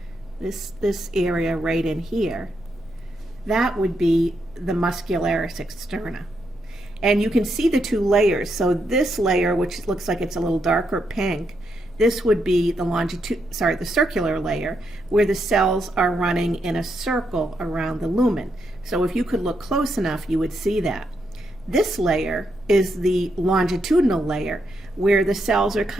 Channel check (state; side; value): noise; right; rumble, 25 dB below the sound